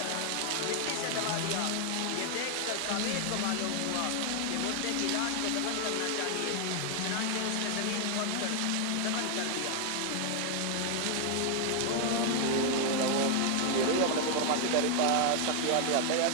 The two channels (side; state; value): both; different; correlation 0.00